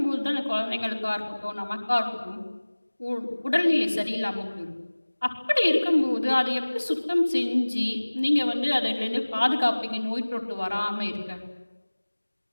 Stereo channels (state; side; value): inverted; both; correlation -1.00